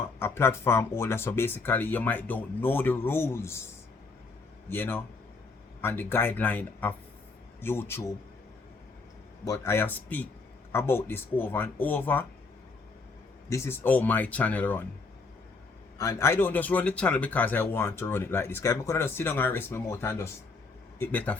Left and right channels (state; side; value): quieter; right; 4.0 dB